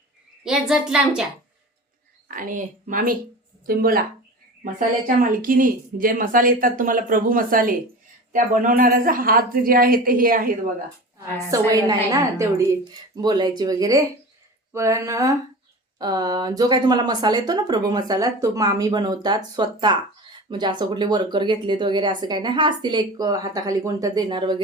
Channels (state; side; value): normal; both; correlation 0.34